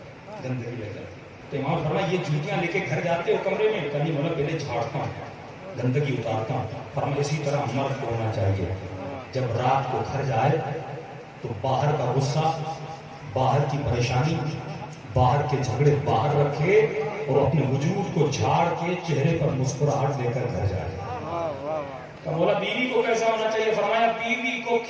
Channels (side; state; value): both; identical; correlation 1.00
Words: گندگی لگ جاتی ہے. تو امام فرمایا یہ جوتیاں لے کے گھر جاتے ہو کمرے میں؟ کبھی مولا پہلے جھاڑتا ہوں, گندگی اتارتا ہوں. فرمایا اسی طرح مرد کو ہونا چاہیے, جب رات کو گھر جائے تو باہر کا غصہ, باہر کی پریشانی, باہر کے جھگڑے باہر رکھے اور اپنے وجود کو جھاڑ کے چہرے پر مسکراہٹ لے کر گھر جائے. تو مولا بیوی کو کیسا ہونا چاہیے؟ فرمایا بیوی کو